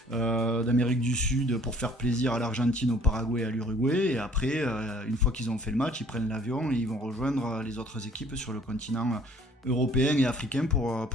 d'Amérique du Sud pour faire plaisir à l'Argentine, au Paraguay et à l'Uruguay. Et après, une fois qu'ils ont fait le match, ils prennent l'avion et ils vont rejoindre les autres équipes sur le continent européen et africain pour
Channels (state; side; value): normal; both; correlation 0.55